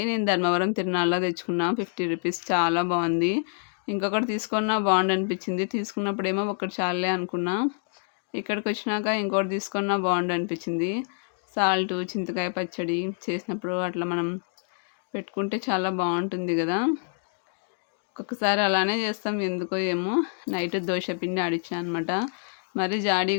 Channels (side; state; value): right; silent; 59 dB below the other